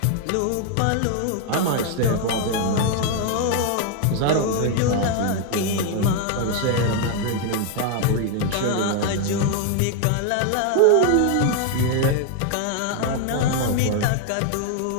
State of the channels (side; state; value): both; different; correlation 0.00